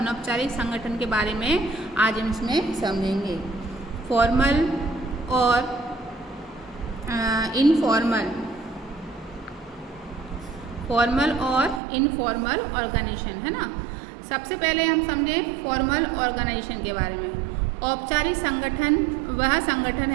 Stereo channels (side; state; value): left; drops out; at 11.8 s